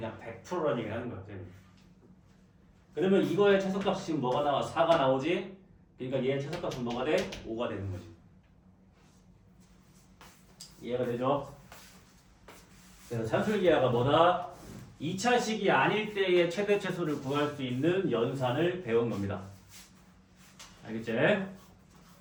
100%라는 얘기를 하는 거야. 그러면 이거의 최소값이 지금 뭐가 나와? 4가 나오지? 그러니까 얘의 최소값은 뭐가 돼? 5가 되는 거지. 이해가 되죠? 그래서 산술기하가 뭐다? 2차식이 아닐 때의 최대 최소를 구할 수 있는 연산을 배운 겁니다. 알겠지?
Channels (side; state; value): both; identical; correlation 1.00